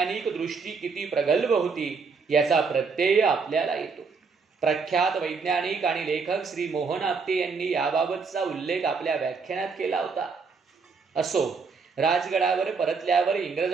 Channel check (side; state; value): left; quieter; 5.0 dB